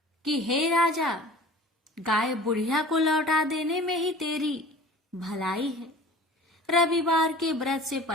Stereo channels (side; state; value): both; normal; correlation 0.43